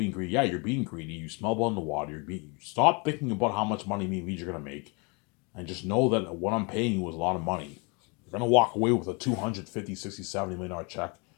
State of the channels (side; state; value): right; quieter; 31.7 dB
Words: greedy. Yeah, you're being greedy. You smell blood in the water. Stop thinking about how much money me and you're going to make. And just know that what I'm paying you is a lot of money. You're going to walk away with a $250, 60, $70 million check.